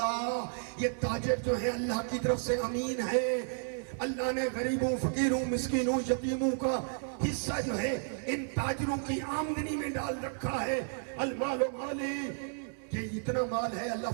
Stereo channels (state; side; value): silent; left; digital silence